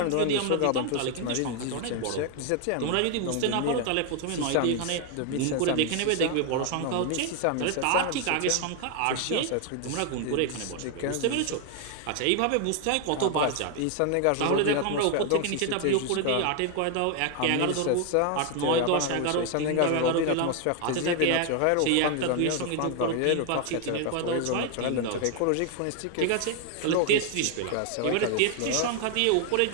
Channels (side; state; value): both; different; correlation 0.01